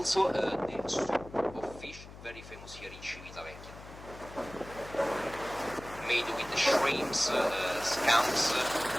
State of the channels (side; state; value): left; noise; hum, 16 dB below the sound